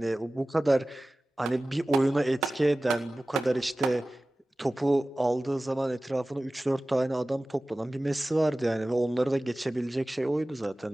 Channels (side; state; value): both; normal; correlation 0.97